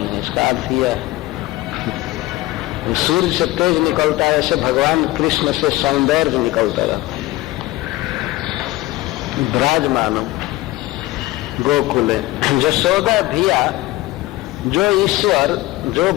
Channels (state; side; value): quieter; right; 18.3 dB